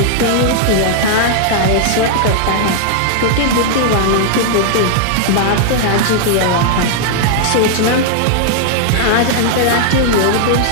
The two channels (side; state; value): both; different; correlation 0.00